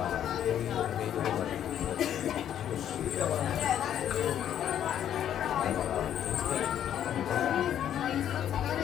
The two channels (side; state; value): right; quieter; 10.3 dB